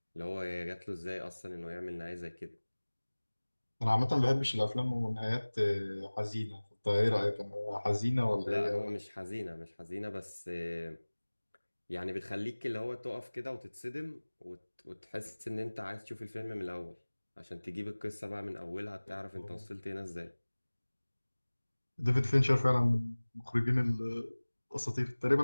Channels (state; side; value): inverted; both; correlation -1.00